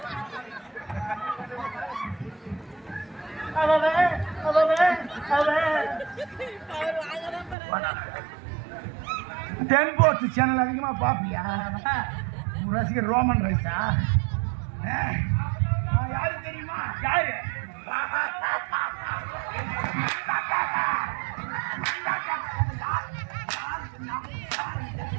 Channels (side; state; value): left; drops out; at 7.6 s